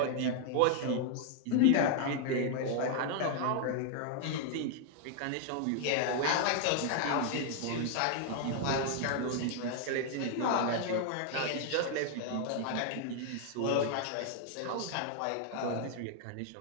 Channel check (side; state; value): both; different; correlation 0.00